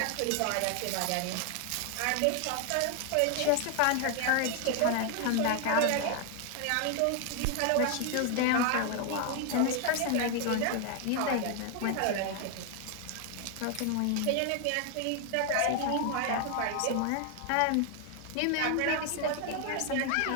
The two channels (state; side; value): different; both; correlation 0.01